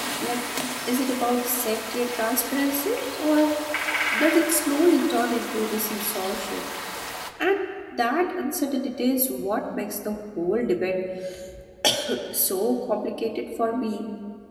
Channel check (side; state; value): both; identical; correlation 1.00